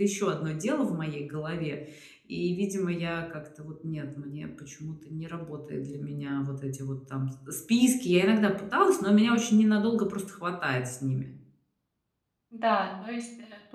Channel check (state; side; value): identical; both; correlation 1.00